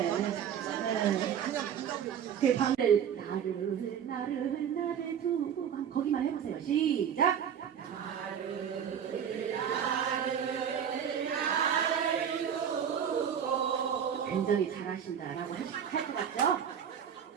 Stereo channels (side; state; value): left; quieter; 8.4 dB